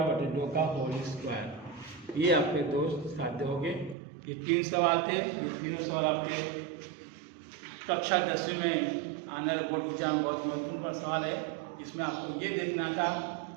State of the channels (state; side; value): drops out; left; at 4.0 s